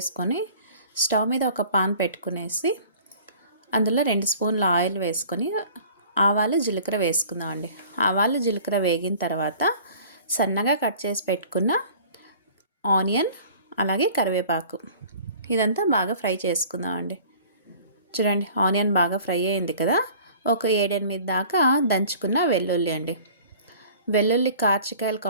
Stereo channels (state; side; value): inverted; both; correlation -0.48